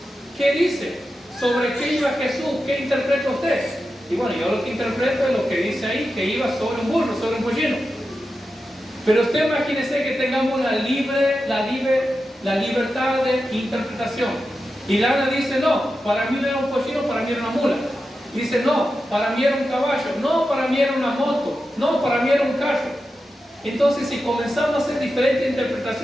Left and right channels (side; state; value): both; normal; correlation 0.90